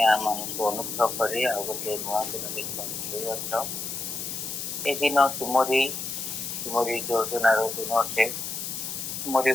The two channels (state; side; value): noise; left; hiss, 5 dB below the sound